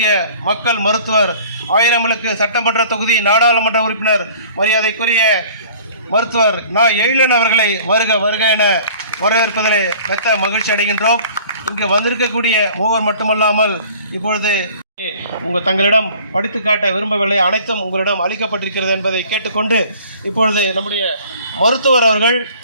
மக்கள் மருத்துவர் ஆயிரம்விளக்கு சட்டமன்ற தொகுதி நாடாளுமன்ற உறுப்பினர் மரியாதைக்குரிய மருத்துவர் எழிலன் அவர்களை வருக என வரவேற்பதிலே மெத்த மகிழ்ச்சி அடைகின்றோம். இங்கு வந்திருக்கக்கூடிய மூவர் மட்டுமல்லாமல் இப்பொழுது தங்களிடம் படித்து காட்ட விரும்பவில்லை, அனைத்தும் உங்களிடம் அளிக்கப்பட்டிருக்கிறது என்பதை கேட்டுக்கொண்டு இப்பொழுது நம்முடைய மருத்துவர் அவர்கள்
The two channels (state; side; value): inverted; both; correlation -0.49